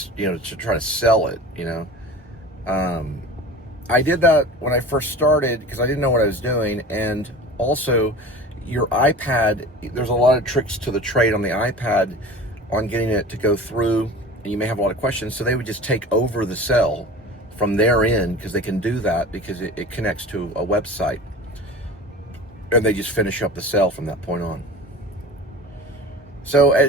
sell it. I did that when I first started because I didn't know what I was doing, and also your iPad. There's a lot of tricks to the trade on the iPad on getting it to go through, and you may have a lot of questions. So they would just take over the sell from their end because they can do that because it connects to a website, and they just finish up the sale from that point on. So,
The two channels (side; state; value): both; normal; correlation 0.37